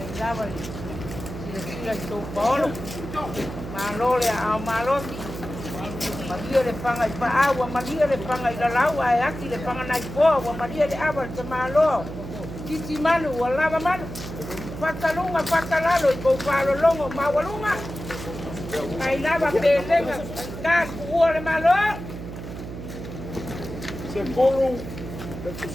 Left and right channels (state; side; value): noise; right; hum, 9 dB below the sound